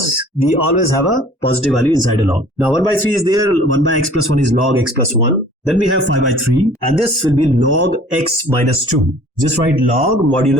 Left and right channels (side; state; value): both; normal; correlation 0.50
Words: we always have a positive value inside a log. Now 1 by 3 is there, 1 by x plus 1 is log x plus 1. Then we have 5 by 3, and this will be log x minus 2. Just write log